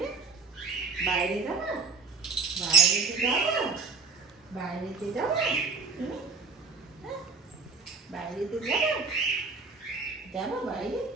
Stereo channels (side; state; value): left; quieter; 4.5 dB